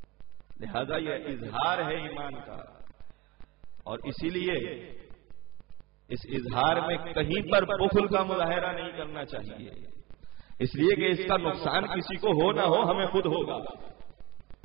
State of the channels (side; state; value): left; quieter; 23.3 dB